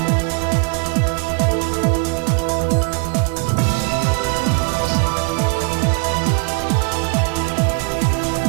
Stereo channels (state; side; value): quieter; left; 28.9 dB